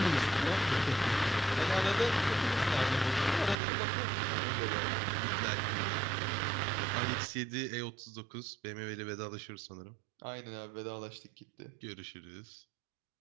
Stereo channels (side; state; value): left; drops out; at 3.6 s